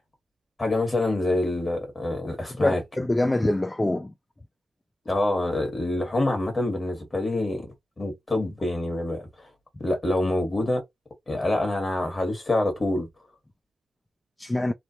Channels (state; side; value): normal; both; correlation 0.93